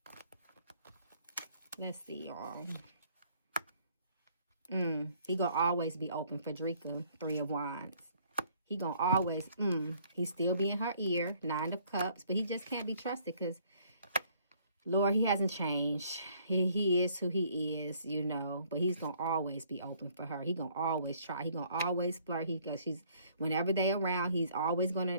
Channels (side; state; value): both; inverted; correlation -0.62